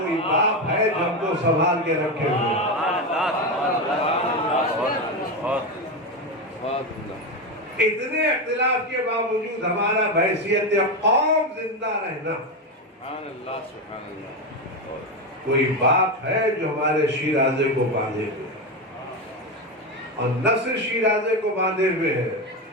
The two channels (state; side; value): normal; both; correlation 0.13